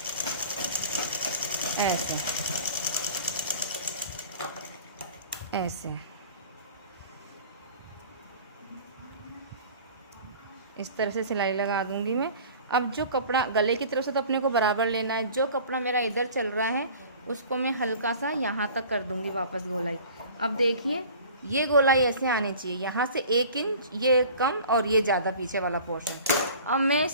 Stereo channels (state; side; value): inverted; both; correlation -0.44